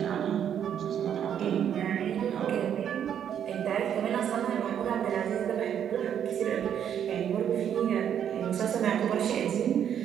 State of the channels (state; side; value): quieter; left; 9.1 dB